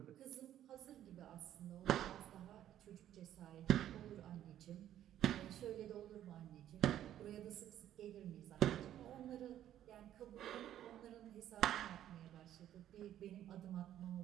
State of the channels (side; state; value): left; quieter; 11.6 dB